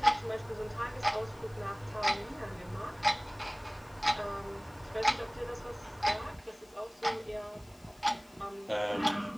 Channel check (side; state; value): left; noise; hiss, 28 dB below the sound